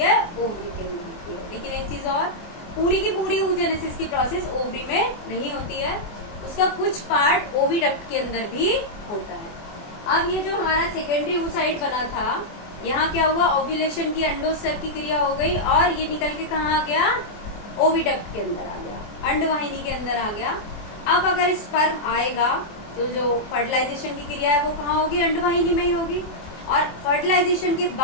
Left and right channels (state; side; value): late; right; 24 ms